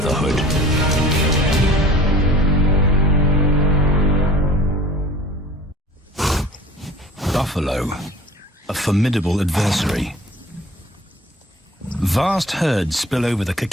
Buffalo, a formidable adversary. Vast herds spill over the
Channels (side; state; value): both; normal; correlation 0.46